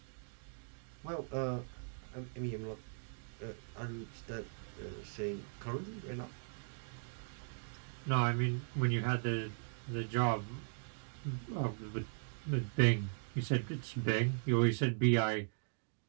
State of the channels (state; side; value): silent; left; digital silence